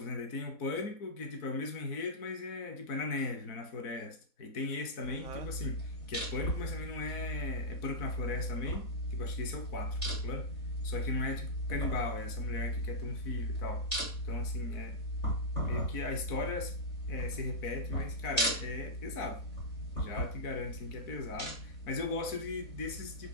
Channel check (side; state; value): right; late; 4.1 ms